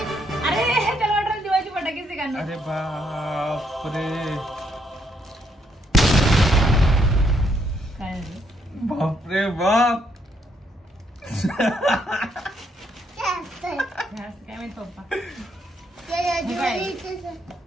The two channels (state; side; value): normal; both; correlation 0.73